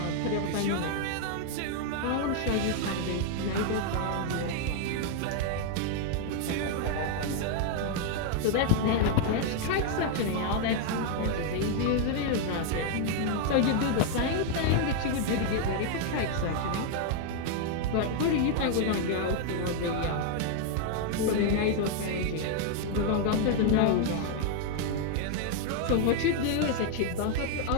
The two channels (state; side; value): different; both; correlation 0.00